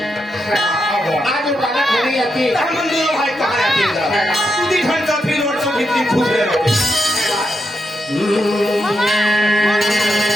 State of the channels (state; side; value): normal; both; correlation 0.83